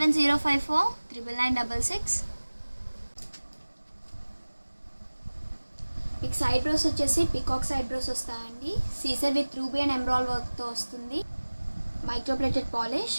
మీకు సైడ్ బ్రోస్ వచ్చేసి పికాక్ సైడ్ బ్రోస్ వస్తాయండి. CZ with ruby and emerald వర్క్తో వస్తుంది. Microplated polish.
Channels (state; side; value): inverted; both; correlation -1.00